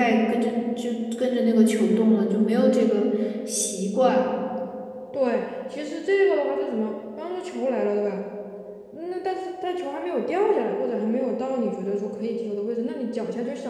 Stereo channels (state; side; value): identical; both; correlation 1.00